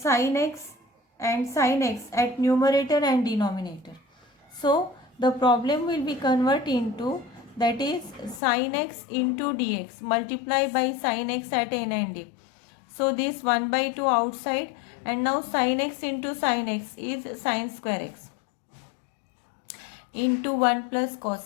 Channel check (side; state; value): right; drops out; at 8.4 s